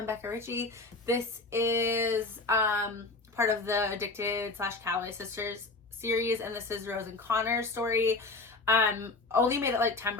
Becker Ritchie. This is part of the Addicted/Calloway Sisters series, and this is Rose and Connor's story. Only made it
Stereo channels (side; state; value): right; quieter; 3.5 dB